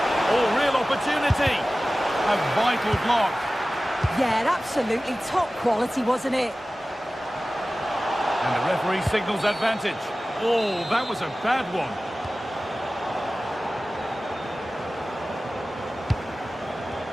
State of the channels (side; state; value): both; normal; correlation 0.96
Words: Oh, real opportunity. A vital block. Yeah, absolutely top quality, wasn't it? And the referee signals advantage. Oh, that was a bad one.